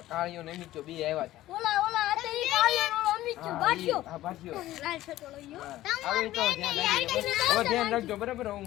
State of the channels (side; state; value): right; quieter; 15.1 dB